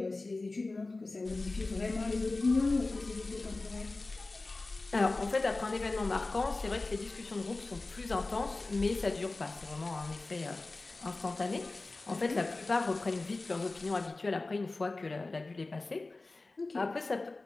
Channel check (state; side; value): quieter; right; 3.3 dB